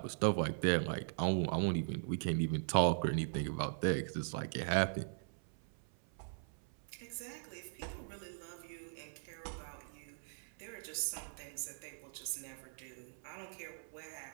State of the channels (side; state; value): left; silent; 51 dB below the other